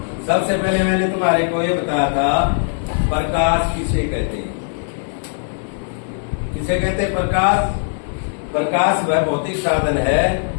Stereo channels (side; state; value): right; silent; digital silence